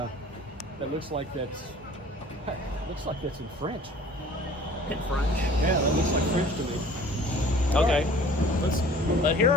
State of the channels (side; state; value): both; normal; correlation 0.49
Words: looks like that's... looks like that's in French. In French? Yeah, that looks like French to me. Okay. But here